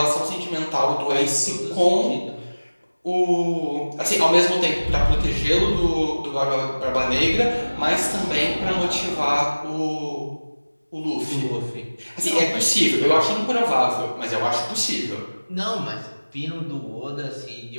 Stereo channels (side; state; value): both; inverted; correlation -1.00